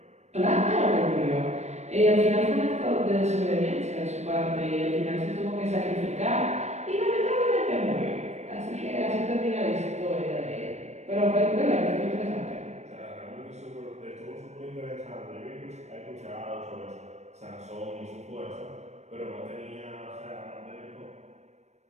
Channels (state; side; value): late; left; 0.32 ms